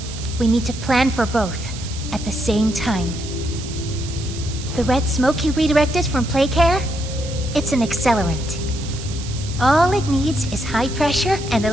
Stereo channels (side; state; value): right; noise; hiss, 13 dB below the sound